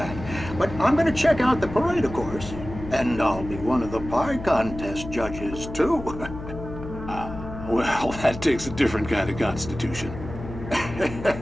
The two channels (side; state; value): left; noise; hum, 11 dB below the sound